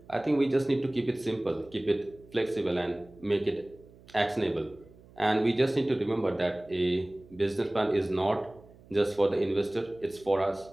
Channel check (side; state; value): right; noise; hum, 24 dB below the sound